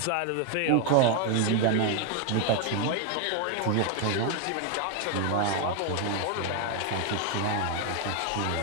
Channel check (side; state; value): both; different; correlation 0.01